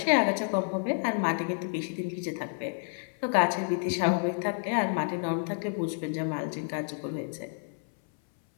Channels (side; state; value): right; silent; 58 dB below the other